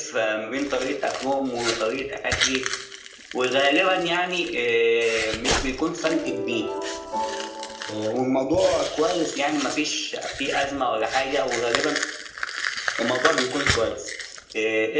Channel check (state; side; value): identical; both; correlation 1.00